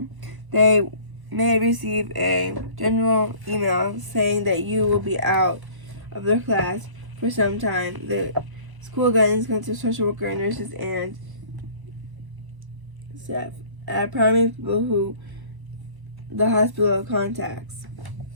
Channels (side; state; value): left; late; 1.0 ms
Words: They may receive a general email saying that you will be out of their class for some time. The school guidance counselors, social worker, nurses, and staff are primary people who the hospital contacts.